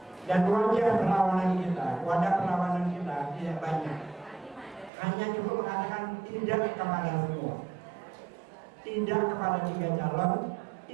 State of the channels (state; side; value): drops out; left; at 4.9 s